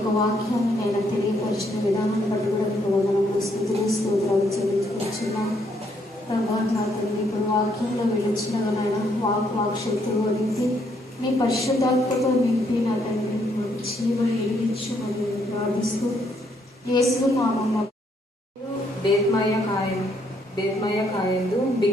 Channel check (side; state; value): both; normal; correlation 0.71